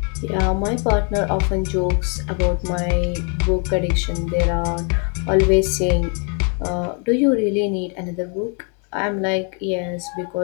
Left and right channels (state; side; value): quieter; right; 38.6 dB